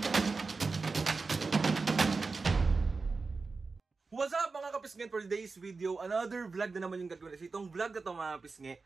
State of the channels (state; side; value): quieter; left; 4.2 dB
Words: What's up mga kapisngi, for today's video, another vlog na naman yung gagawin. Itong vlog na to mga kapisngi,